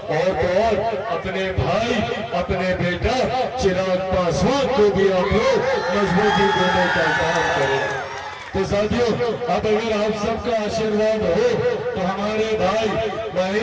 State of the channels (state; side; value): identical; both; correlation 1.00